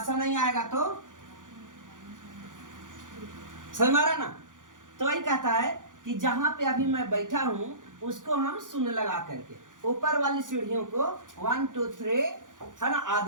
नहीं आएगा तो समझ में आ रहा ना। तो वही कहता है कि जहां पे अभी मैं बैठा हूं उसको हम शून्य लगा करके ऊपर वाली सीढ़ियों को 1 2 3 है ना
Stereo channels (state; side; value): late; left; 0.88 ms